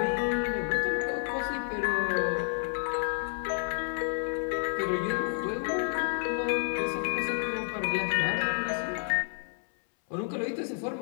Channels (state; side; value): silent; right; 58 dB below the other